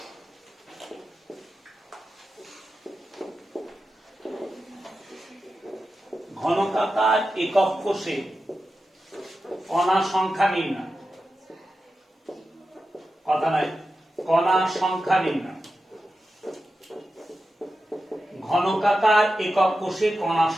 ঘনকাকার একক কোষে কণা সংখ্যা নির্ণয়, কথা নয়, কণা সংখ্যা নির্ণয়, ঘনকাকার একক কোষে কণা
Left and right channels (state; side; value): normal; both; correlation 0.91